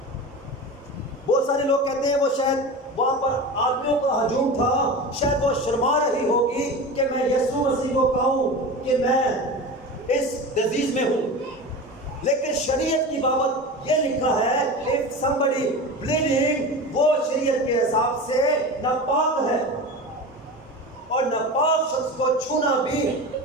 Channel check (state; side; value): normal; both; correlation 0.29